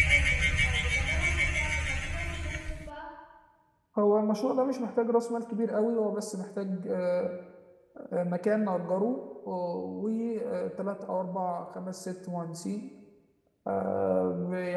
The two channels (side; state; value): both; identical; correlation 1.00